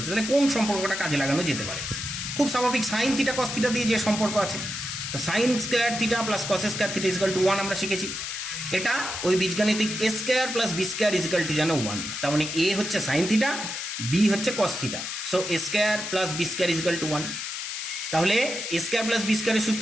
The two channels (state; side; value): noise; left; hiss, 5 dB below the sound